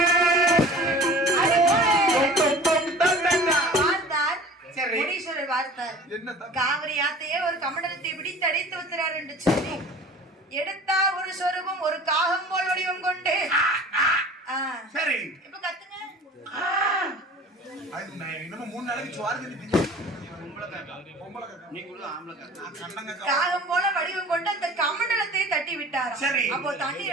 காவிரி ஆத்தையே ஒரு கமண்டலத்தை பிடித்து அடைத்து வைக்கிறார் என்று சொல்லி எடுத்தார் ஒரு சொரூபம் ஒரு காகம் போல் வடிவம் கொண்டு சரி இப்ப கத்துங்க இன்னும் 3 நாளைக்கு காகம் போல வடிவம் கொண்டு அந்த கமண்டலத்தை தட்டி விட்டார். அப்போ தண்ணீர்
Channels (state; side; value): normal; both; correlation 0.43